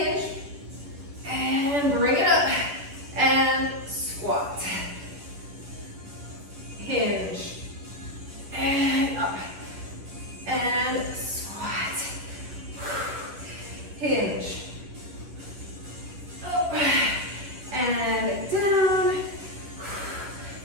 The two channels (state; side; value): late; left; 10 ms